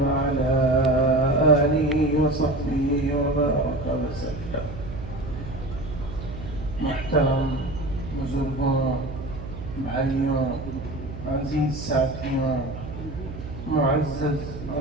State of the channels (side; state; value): right; noise; hum, 10 dB below the sound